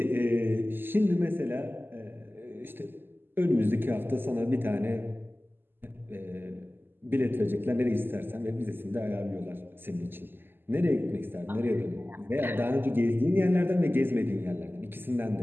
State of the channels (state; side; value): late; left; 0.097 ms